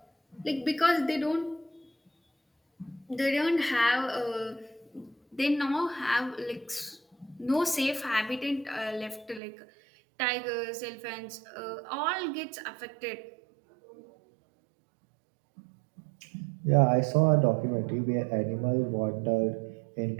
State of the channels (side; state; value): left; drops out; at 9.4 s